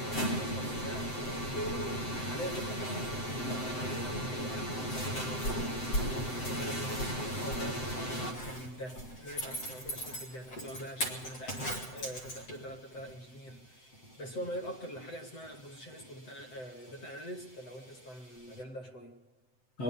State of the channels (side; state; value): right; late; 7.8 ms